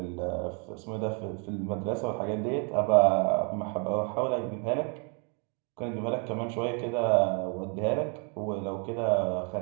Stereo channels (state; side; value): quieter; left; 37.2 dB